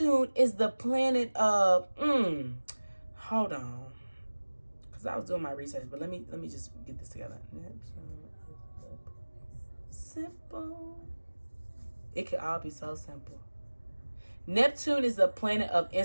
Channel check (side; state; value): both; inverted; correlation -1.00